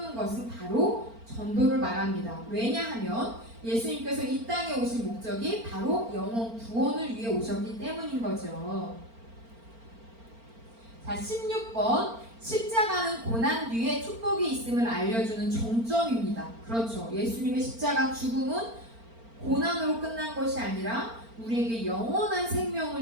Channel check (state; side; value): late; left; 4.4 ms